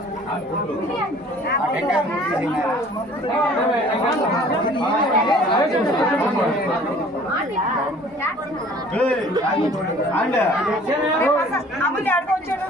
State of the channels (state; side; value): normal; both; correlation 0.51